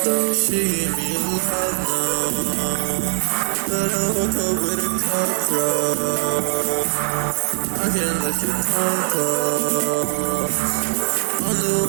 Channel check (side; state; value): left; silent; digital silence